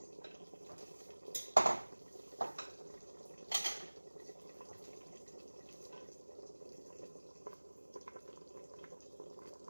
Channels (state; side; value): inverted; both; correlation -1.00